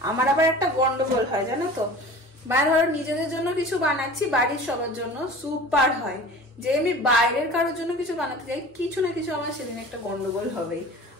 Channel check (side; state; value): both; normal; correlation 0.40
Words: আমার আবার একটা গন্ডগোল হয় জানো তো, বাইরে ধরো নিজেদের জন্য কিছু বানাচ্ছি, বাড়ির সবার জন্য সুপার হয়, যে আমি বাইরের কারোর জন্য কিছু বানাতে যাই, কিছু না কিছু আমার সেদিন একটা গন্ডগোল হবেই।